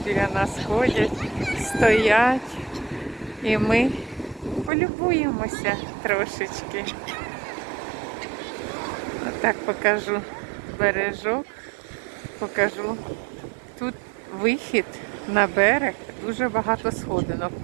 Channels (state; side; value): drops out; left; at 4.7 s